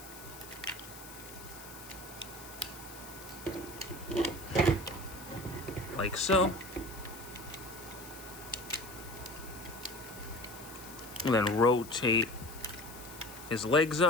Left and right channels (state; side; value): noise; left; hiss, 15 dB below the sound